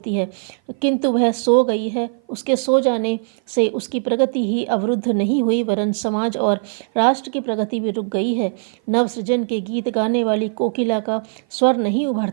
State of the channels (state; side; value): silent; left; 56 dB below the other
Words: है, किंतु वह सो गई है। उसके सो जाने से उसकी प्रगति ही अवरुद्ध नहीं हुई, वरन समाज और राष्ट्र की प्रगति भी रुक गई है। नवसृजन के गीत गाने वाली कोकिला का स्वर नहीं